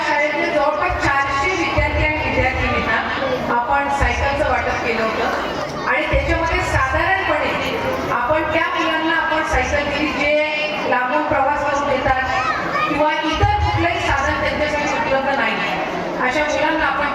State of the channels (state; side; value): identical; both; correlation 1.00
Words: शाळेतले जवळपास 400 विद्यार्थी आणि विद्यार्थिनींना आपण सायकलचं वाटप केलं होतं आणि त्याच्यामध्ये साधारणपणे आपण त्या मुलांना आपण सायकल दिली जे लांबून प्रवास करून येतात किंवा इतर कुठलंही साधन त्यांच्यासाठी उपलब्ध नाही, अशा मुलांना आपण